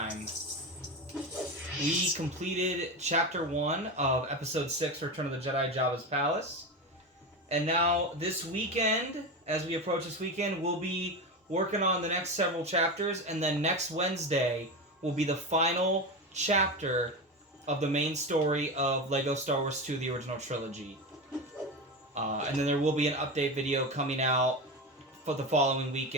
we completed Chapter 1 of Episode 6, Return of the Jedi, Jabba's Palace. And now, this weekend, as we approach this weekend, we'll be working on the next several chapters, and then next Wednesday will be the final chapter of the main story of LEGO Star Wars 2, the original trilogy. And then there will be an update video coming out for the following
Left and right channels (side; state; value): both; normal; correlation 0.20